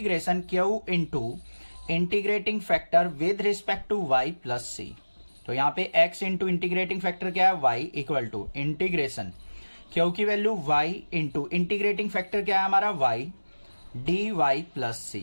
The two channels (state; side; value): inverted; both; correlation -1.00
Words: q into integrating factor with respect to y plus c. तो यहां पे x इंटू इंटीग्रेटिंग फैक्टर क्या है, y equal to integration q की value y into integrating factor क्या है हमारा, y d y plus